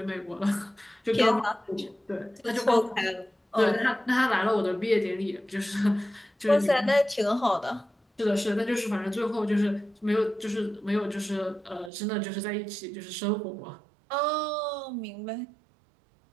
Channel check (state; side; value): drops out; left; at 11.9 s